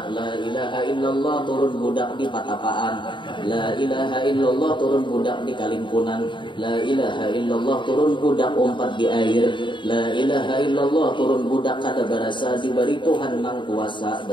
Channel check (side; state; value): right; late; 0.23 ms